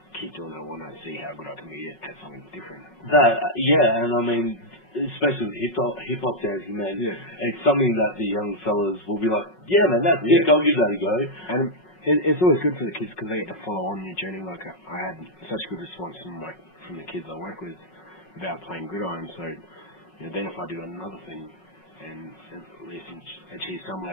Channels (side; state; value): right; late; 5.4 ms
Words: keep doing it when I see how good I can be at something different? Yeah, and I mean, especially with hip hop dancing, man, Yeah. it's something that the young fellas will be like, yeah, man, that's Yeah. sick. I'll give that a go. And it's always good for the kids because they get to follow on your journey. Like I had such good response from the kids I work with about playing gridiron. So you know, then if I do another thing and at least achieve some